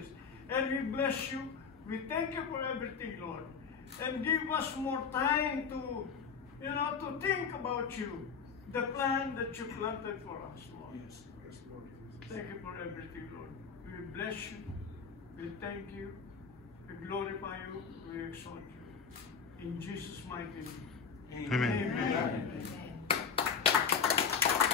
And we bless you. We thank you for everything, Lord. And give us more time to, to think about you. The plan that you planted for us, Lord. Yes, Lord. Thank you for everything, Lord. We bless you. We thank you. We glorify you. We exalt you. In Jesus' mighty name. Amen. Amen.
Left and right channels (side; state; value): right; quieter; 6.1 dB